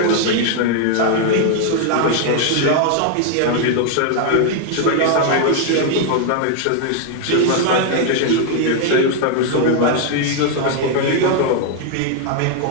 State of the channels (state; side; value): different; both; correlation 0.00